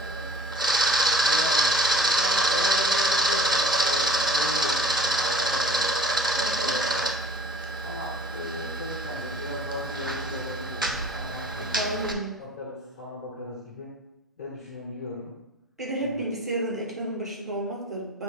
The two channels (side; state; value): both; normal; correlation 0.46